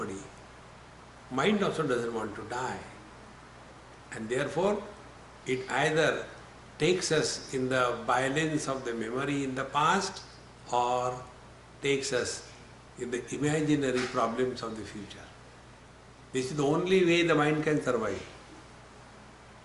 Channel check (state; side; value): identical; both; correlation 1.00